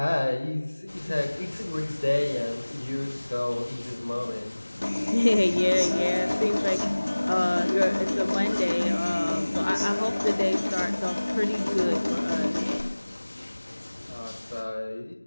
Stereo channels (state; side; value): inverted; both; correlation -1.00